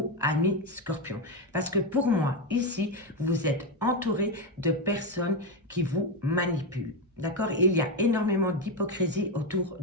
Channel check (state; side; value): normal; both; correlation 0.09